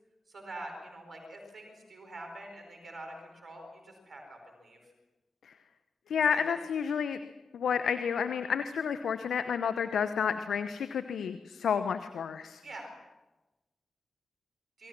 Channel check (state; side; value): quieter; right; 6.4 dB